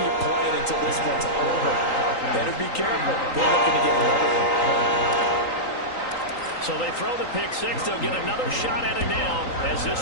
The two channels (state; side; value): late; right; 3.8 ms